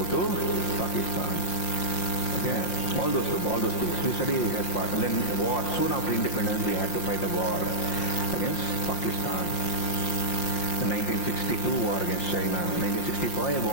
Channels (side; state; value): right; late; 5.7 ms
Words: to Pakistan. Okay, all those things we study as part. And then war. Soon after independence, we had to fight a war against Pakistan. The 1962 war against China, 1965